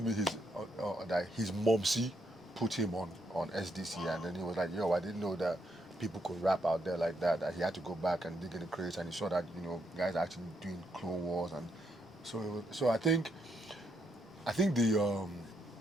me that his momsy put him on SDC, and then he was like, "Yo, I didn't know that people could rap out there like that." That he had to go back and dig in the crates, and he saw that guys are actually doing Clone Wars, and so I think the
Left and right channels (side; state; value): both; normal; correlation 0.77